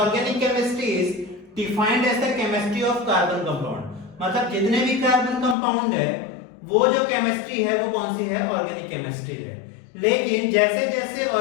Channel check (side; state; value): right; drops out; at 5.6 s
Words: chemistry is defined as the chemistry of carbon compound. मतलब जितने भी कार्बन कंपाउंड है वो जो केमिस्ट्री है वो कौन सी है? ऑर्गेनिक केमिस्ट्री है। लेकिन जैसे जैसे